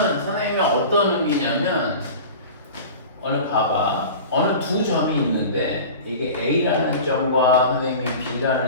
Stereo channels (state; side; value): inverted; both; correlation -0.36